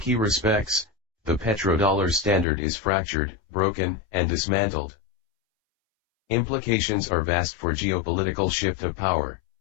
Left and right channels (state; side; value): drops out; right; at 2.5 s